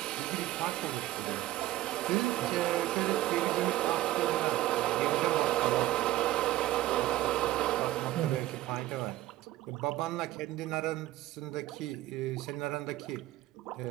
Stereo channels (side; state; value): left; quieter; 15.5 dB